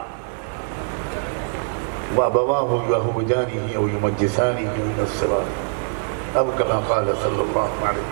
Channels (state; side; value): silent; left; digital silence